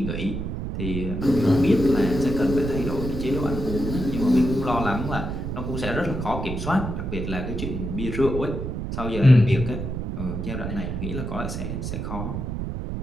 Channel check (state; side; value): noise; right; rumble, 4 dB below the sound